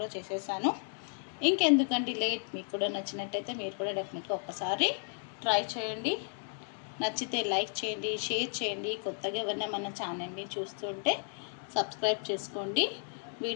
చేసేసాను. ఇంకెందుకండి లేట్. మీకు కూడా నచ్చినట్టయితే మీరు కూడా డెఫినెట్గా ఒక్కసారి ట్రై చేయండి. నచ్చితే లైక్ చేయండి, షేర్ చేయండి. కొత్తగా ఎవరైనా మన ఛానల్ని చూస్తుంటే సబ్స్క్రైబ్ చేసుకోండి.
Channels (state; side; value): silent; right; 55 dB below the other